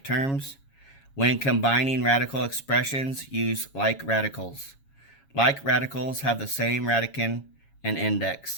terms. When combining radical expressions, use like radicals. Like radicals have the same radicand and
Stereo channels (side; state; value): right; late; 7.3 ms